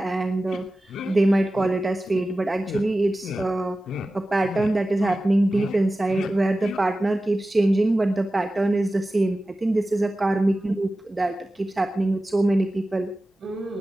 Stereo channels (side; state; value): both; normal; correlation 0.95